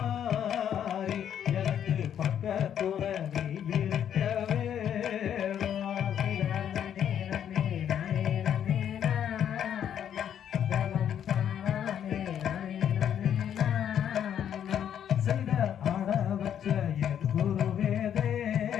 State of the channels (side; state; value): right; quieter; 9.4 dB